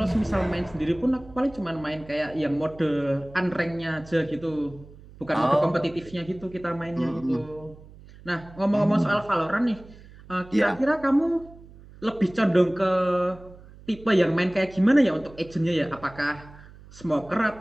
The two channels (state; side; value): noise; right; hum, 21 dB below the sound